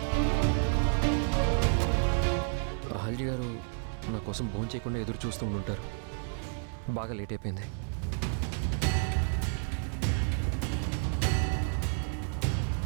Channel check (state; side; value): silent; left; 57 dB below the other